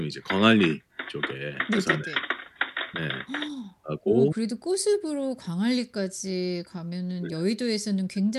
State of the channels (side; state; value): both; identical; correlation 1.00